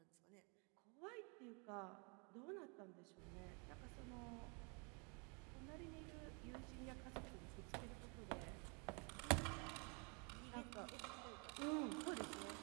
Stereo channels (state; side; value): quieter; left; 34.2 dB